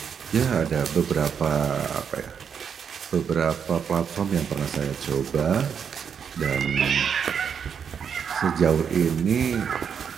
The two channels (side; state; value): left; quieter; 7.2 dB